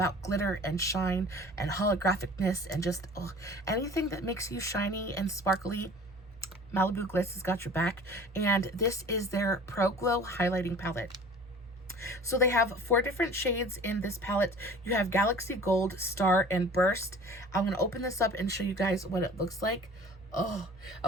glitter and shine and holographicness and just anything that makes you shiny and sparkly. Malibu Glitz has got your back, and this is their Pro Glow highlighting palette. So they have 4 different shades in this palette. You have Galaxy Gold, Star, and Burst. I'm going to open this up and show you guys what it looks like. Oh,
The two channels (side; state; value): both; normal; correlation 0.45